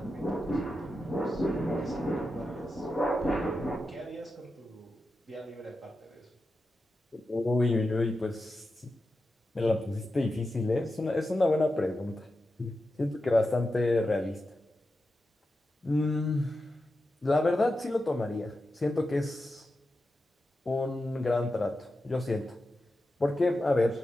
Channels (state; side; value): normal; both; correlation 0.90